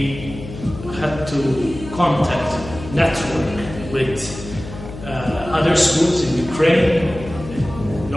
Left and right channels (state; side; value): noise; left; hum, 12 dB below the sound